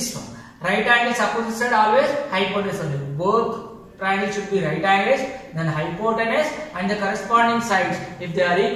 one. Right angles opposite side always hypotenuse only. Both triangles should be right angles, then hypotenuse and the corresponding sides, if they are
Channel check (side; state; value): both; identical; correlation 1.00